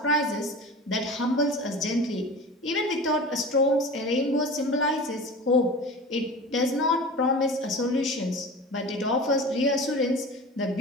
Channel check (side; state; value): both; normal; correlation 0.35